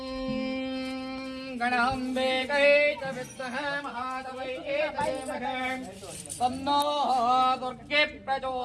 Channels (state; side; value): identical; both; correlation 1.00